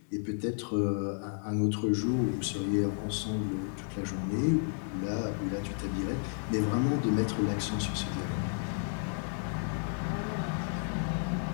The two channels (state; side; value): silent; right; 56 dB below the other